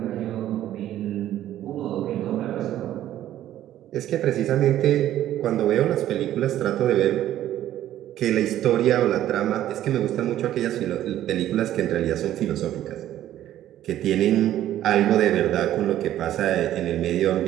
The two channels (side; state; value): left; quieter; 12.6 dB